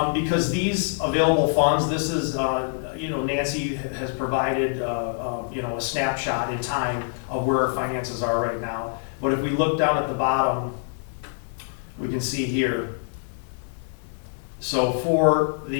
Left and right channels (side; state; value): right; silent; 61 dB below the other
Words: because these available funds, this is, Nancy has provided, a snapshot in time of where our finances are right now. But if we look down at the bottom, we can see here. So for